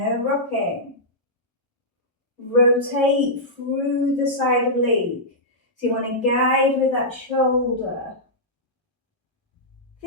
rocking. Rotate through the side oblique. So you want to guide with that shoulder.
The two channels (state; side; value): normal; both; correlation -0.12